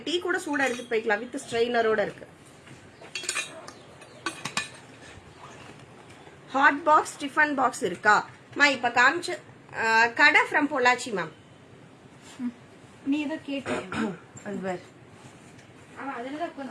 டீ கூட சூட எடுத்து போய்க்கலாம். வித் ஸ்ட்ரெயினரோட இருக்கு. ஹாட் பாக்ஸ், டிஃபன் பாக்ஸ் இருக்கா மா? இப்ப காமிச்சு கடை ஃப்ரம் பொள்ளாச்சி மேம். நீ ஏதோ கேட்டீங்க.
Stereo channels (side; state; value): both; identical; correlation 1.00